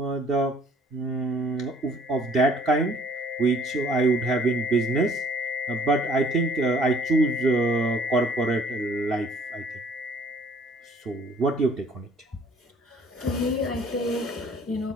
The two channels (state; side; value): normal; both; correlation 0.57